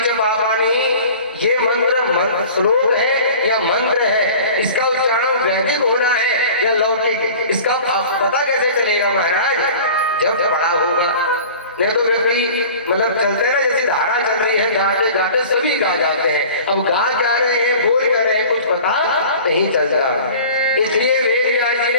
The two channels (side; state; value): both; inverted; correlation -0.42